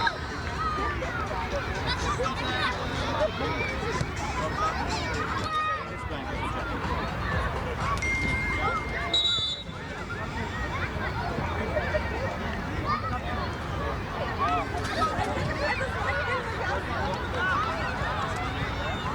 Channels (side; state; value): both; identical; correlation 1.00